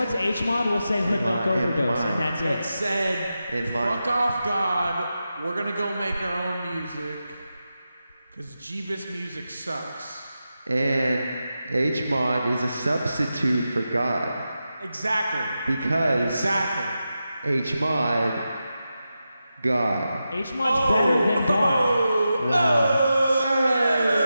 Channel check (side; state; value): both; inverted; correlation -0.90